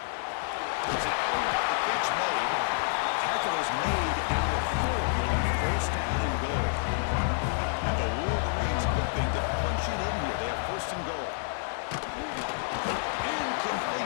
It's an out. The catch made. Tackle is made at the 4. 1st down and goal. And the Wolverines hoping to punch it in here. They have 1st and goal.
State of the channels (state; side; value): silent; right; digital silence